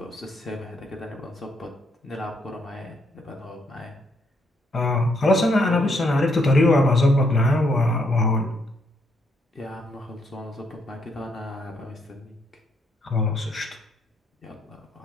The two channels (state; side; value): normal; both; correlation 0.74